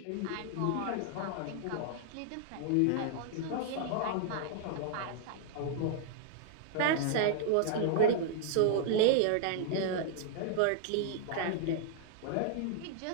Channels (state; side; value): different; both; correlation -0.01